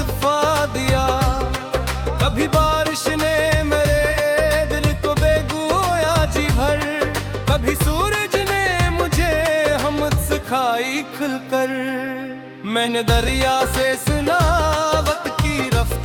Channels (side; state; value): both; identical; correlation 1.00